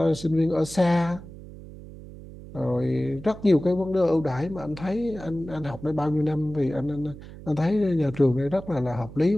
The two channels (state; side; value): noise; right; hum, 15 dB below the sound